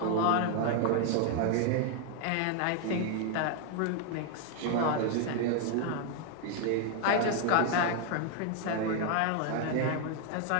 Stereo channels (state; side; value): different; both; correlation 0.00